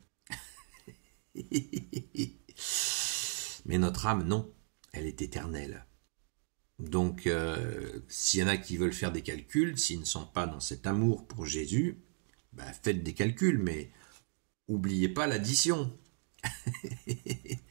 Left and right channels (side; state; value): left; silent; 54 dB below the other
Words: Mais notre âme, non, elle est éternelle. Donc, s'il y en a qui veulent faire des calculs, s'ils ne sont pas dans cet amour pour Jésus, faites des calculs, mais oubliez pas l'addition.